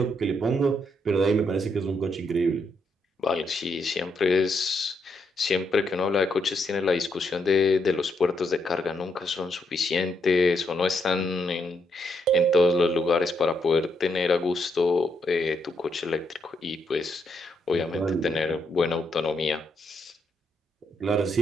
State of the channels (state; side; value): normal; both; correlation 0.77